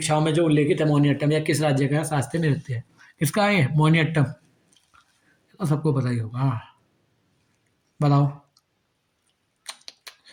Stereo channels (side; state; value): both; identical; correlation 1.00